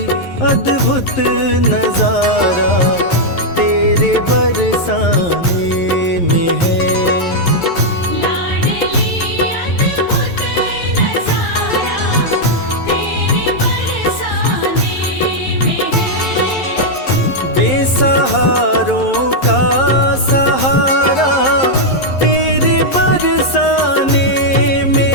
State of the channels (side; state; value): right; late; 11 ms